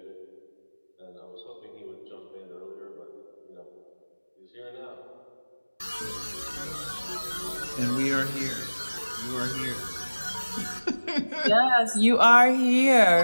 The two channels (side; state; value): both; inverted; correlation -1.00